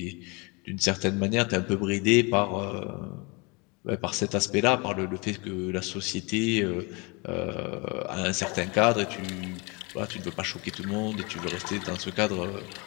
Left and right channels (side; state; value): right; quieter; 28.8 dB